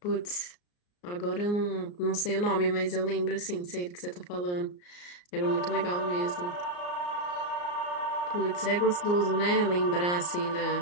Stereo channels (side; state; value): right; late; 34 ms